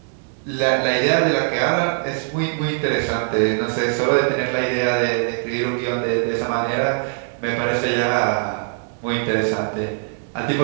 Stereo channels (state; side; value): silent; left; 59 dB below the other